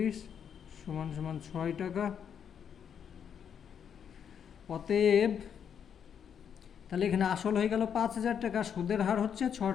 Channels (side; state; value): right; quieter; 8.0 dB